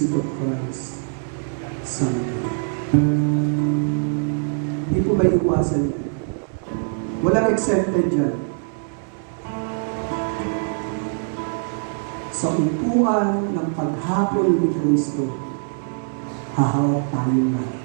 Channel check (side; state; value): left; silent; 64 dB below the other